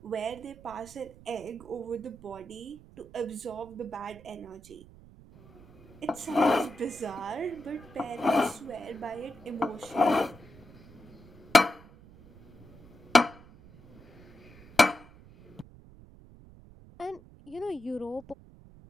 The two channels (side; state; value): right; noise; rumble, 21 dB below the sound